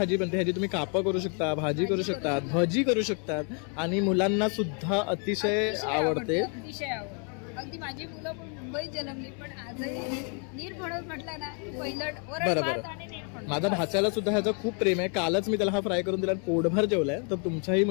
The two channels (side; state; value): right; quieter; 38.8 dB